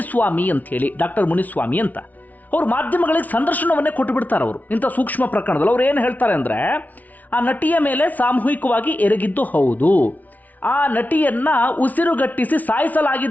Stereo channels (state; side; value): late; right; 0.076 ms